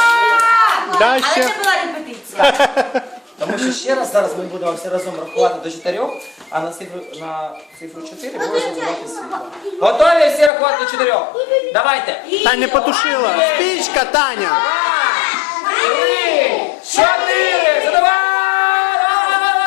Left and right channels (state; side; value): drops out; right; at 10.5 s